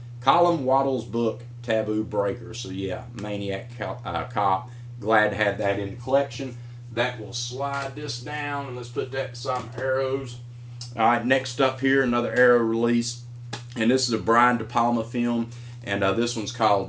Waddell's book Taboo Breaker. So yeah, Maniac Cop. Glad to have that in the collection. That will slide this down, and let's put that beside my Arrows. All right, next up here, another Arrow release, and this is a Brian De Palma film, and this one's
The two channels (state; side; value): identical; both; correlation 1.00